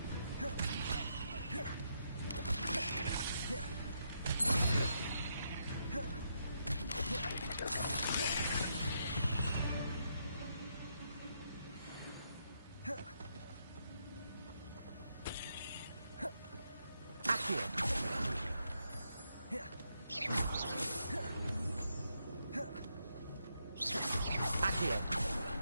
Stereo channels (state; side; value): inverted; both; correlation -0.79